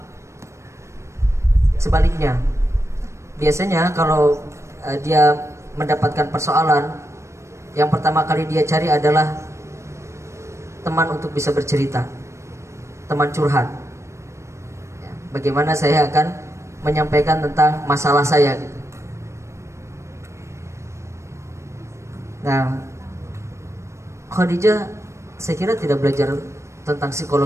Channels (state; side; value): late; left; 0.14 ms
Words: sebaliknya. Biasanya kalau dia mendapatkan persoalan, yang pertama kali dia cari adalah teman untuk bisa bercerita, teman curhat. Ya, bagaimana saya akan menyampaikan tentang masalah saya gitu. Nah, Khadijah saya kira tidak belajar tentang